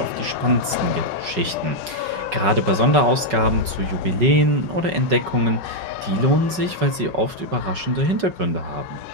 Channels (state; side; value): late; left; 5.3 ms